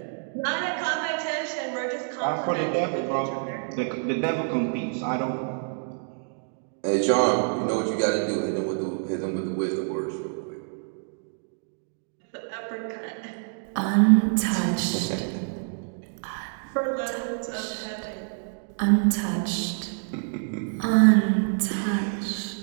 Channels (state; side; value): silent; left; 60 dB below the other